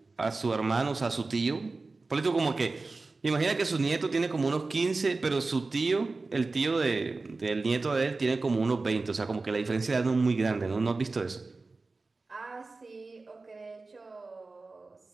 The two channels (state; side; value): quieter; left; 3.7 dB